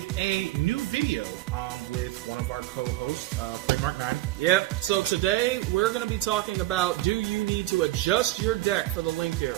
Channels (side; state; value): left; quieter; 17.1 dB